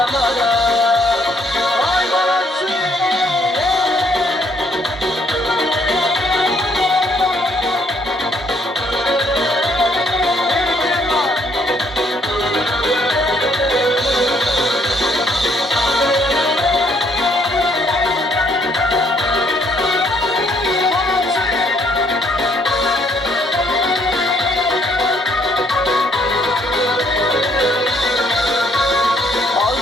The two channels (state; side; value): normal; both; correlation 0.67